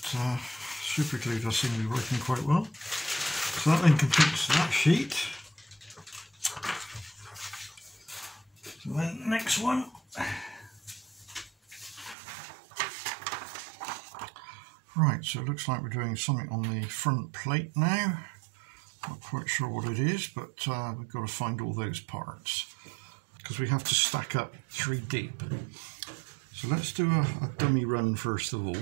But super glue does seem to be working quite well. So that then completes that sheet. So then next one. Right, so it looks like we're doing something on the front plate now. Not quite sure what it is, but we've got to find all those parts because we have to stack up 3 deep. So let's do a dummy run first of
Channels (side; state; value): left; drops out; at 12.2 s